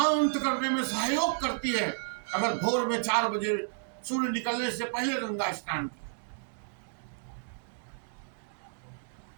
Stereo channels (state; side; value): silent; left; digital silence